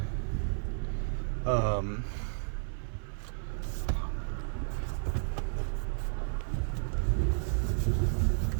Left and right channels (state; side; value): silent; left; 56 dB below the other